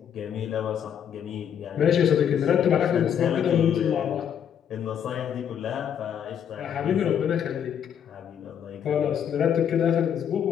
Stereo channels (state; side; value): quieter; right; 8.7 dB